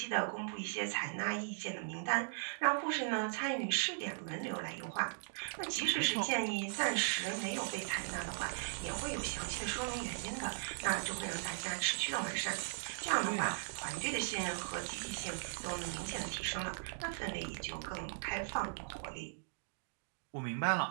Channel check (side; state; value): left; silent; digital silence